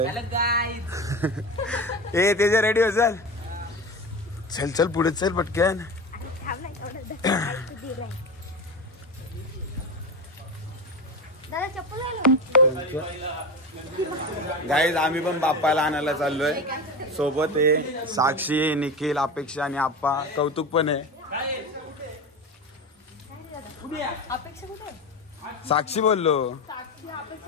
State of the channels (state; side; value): normal; both; correlation 0.25